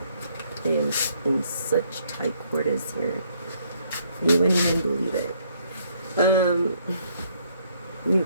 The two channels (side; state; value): both; inverted; correlation -0.68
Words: in such tight quarters here, you wouldn't even believe it. You